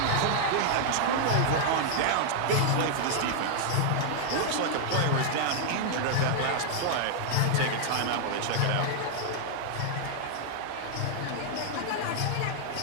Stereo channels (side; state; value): both; different; correlation -0.01